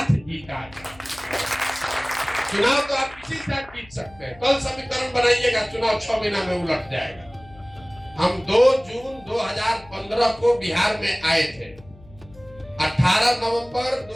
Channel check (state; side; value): noise; left; hum, 23 dB below the sound